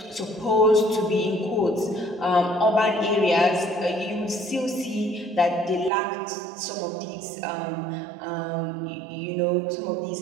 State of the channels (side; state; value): left; drops out; at 5.9 s